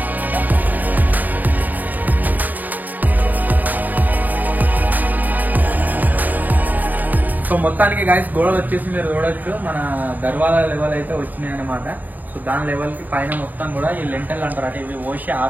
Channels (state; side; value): late; left; 0.084 ms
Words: సో మొత్తానికి గాయస్ గోడలు వచ్చేసి మీరు చూడొచ్చు, మన దర్వాజా లెవెల్ అయితే వచ్చినాయి అనమాట. సో దాని లెవెల్ కి పైన మొత్తం కూడా ఈ లెంటల్ అంటారు అంటే ఇవి ఓసి